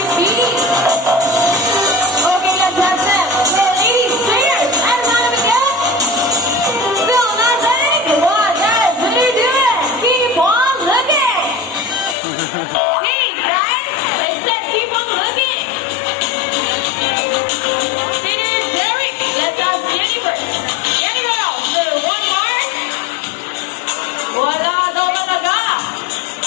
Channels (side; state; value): right; drops out; at 12.2 s